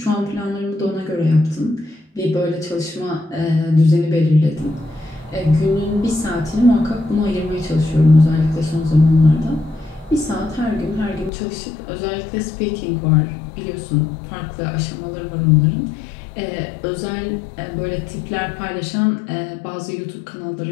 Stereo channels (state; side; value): drops out; right; at 11.3 s